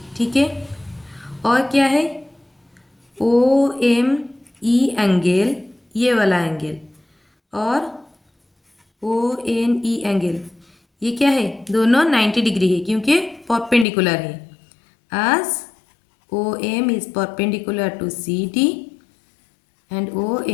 ठीक है। और क्या है, ओ एम ई एंगल, ये वाला एंगल, और ओ एन ई एंगल, ये क्या है, दोनों 90 डिग्री है क्योंकि परपेंडिकुलर है। as OM is perpendicular to CD and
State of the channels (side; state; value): right; drops out; at 13.9 s